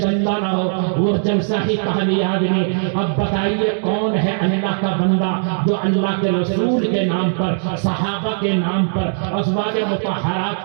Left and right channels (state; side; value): silent; left; digital silence